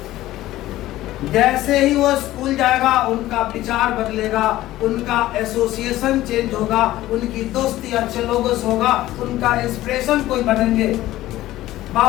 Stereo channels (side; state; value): right; quieter; 15.5 dB